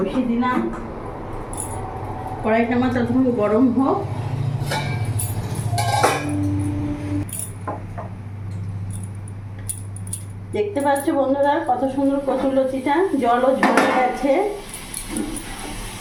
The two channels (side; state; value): both; identical; correlation 1.00